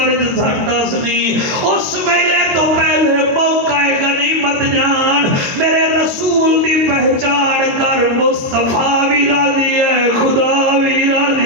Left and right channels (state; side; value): late; left; 22 ms